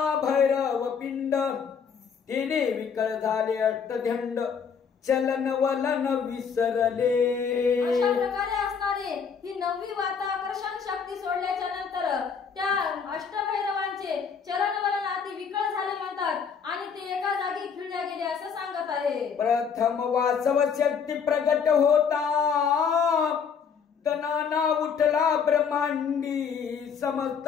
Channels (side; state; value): right; quieter; 6.4 dB